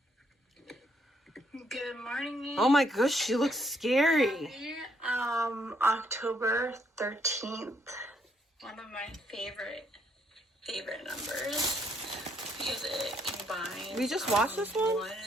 Good morning. Oh my gosh, she looks scary. October 13th. One of my favorite numbers because it combines. We just watched this one? 1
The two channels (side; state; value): both; normal; correlation 0.71